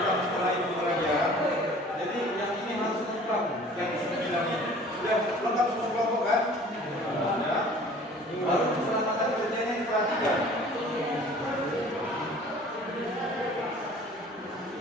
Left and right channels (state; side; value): normal; both; correlation 0.48